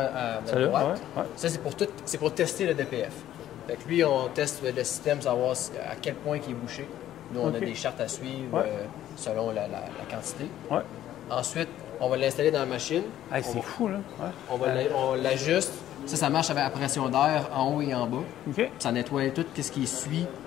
notre Celle-là, droite. ouais, ouais. Ça, c'est pour tester le DPF. Fait que lui, on teste le système, savoir à quel point il est bouché. Nous, on OK. a des chartes à suivre Ouais. selon la quantité. Ouais. Ensuite, on va l'installer dans la machine. Hey, c'est fou, là. Ouais. On l'ajuste. Ça marche avec la pression d'air en haut et en bas. OK. Ça nettoie tout ce qui suit,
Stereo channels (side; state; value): right; quieter; 12.3 dB